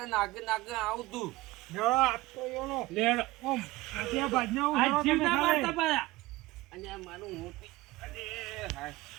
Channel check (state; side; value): quieter; left; 19.4 dB